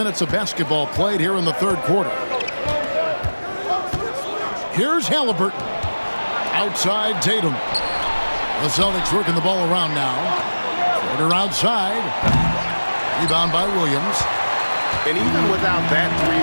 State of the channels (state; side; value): inverted; both; correlation -1.00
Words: of basketball played here in the third quarter. Here's Halliburton. Outside Tatum. The Celtics working the ball around now. Porter outside. Rebound by Williams. And even without that